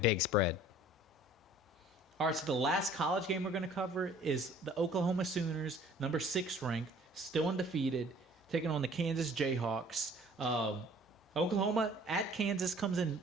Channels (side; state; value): both; normal; correlation 0.53